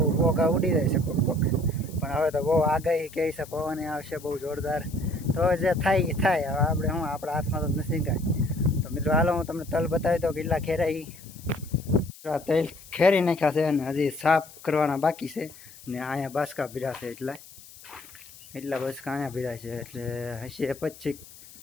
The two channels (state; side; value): noise; left; hiss, 20 dB below the sound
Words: ભોગા ઉડી જાય છે કોક કોક, પણ હવે તો બહુ આગાહી કહે છે પવન આવશે બહુ જોરદાર। તો જે થાય એ થાય, હવે આપણે શું આપણા હાથમાં તો નથી કાંઈ। તો મિત્રો હાલો હું તમને તલ બતાવી દઉં કેટલા ખેરાઈ। તલ ખેરી નાખ્યા છે અને હજી સાફ કરવાના બાકી છે, ને અહીંયા બાસકા ભીડા છે, એટલા બાસકા અહીંયા ભીડા છે, એટલે હશે